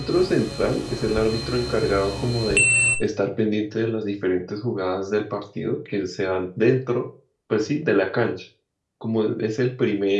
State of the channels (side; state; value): both; identical; correlation 1.00